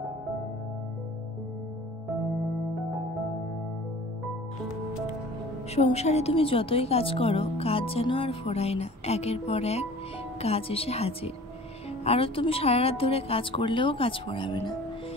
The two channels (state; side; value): normal; both; correlation 0.45